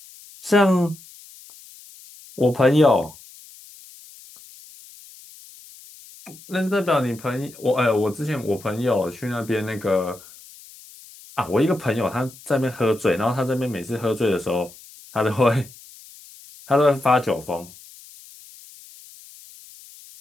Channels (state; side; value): noise; left; hiss, 21 dB below the sound